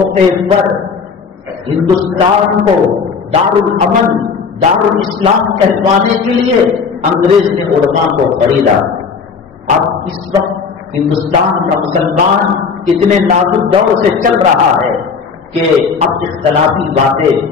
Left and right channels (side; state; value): right; quieter; 5.5 dB